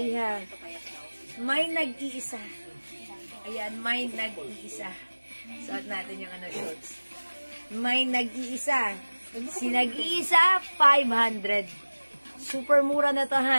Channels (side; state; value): both; inverted; correlation -1.00